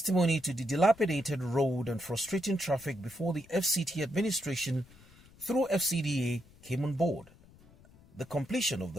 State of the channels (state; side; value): noise; left; rumble, 25 dB below the sound